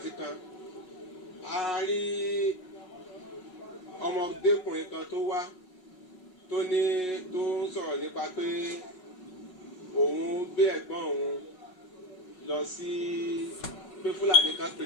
kan, a rí ọmọdékùnrin kan tó wá tó ń sọ̀rọ̀ nípa pé òun gbé ẹ̀gbọ́n òun lọ sí pé Fúlàní kan pe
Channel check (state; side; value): late; right; 5.4 ms